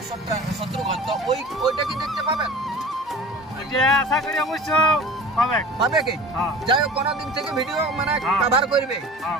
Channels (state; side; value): normal; both; correlation 0.39